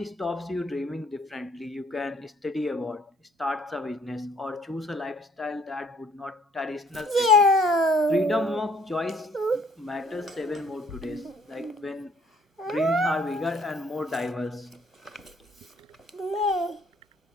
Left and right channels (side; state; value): both; normal; correlation 0.61